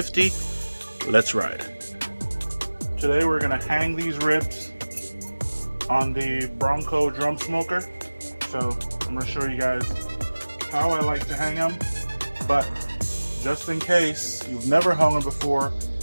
Let's ride. Today we're going to hang these ribs on the Bronco drum smoker. So I'm going to show you guys how I like to hang them, but just in case you've never hung them before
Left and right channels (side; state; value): both; inverted; correlation -1.00